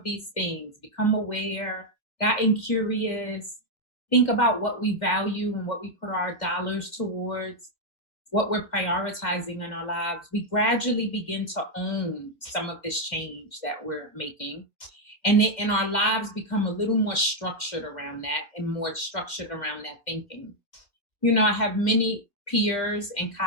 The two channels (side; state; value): right; late; 2.2 ms